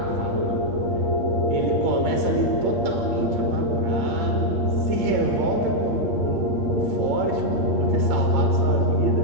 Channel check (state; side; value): late; left; 8.9 ms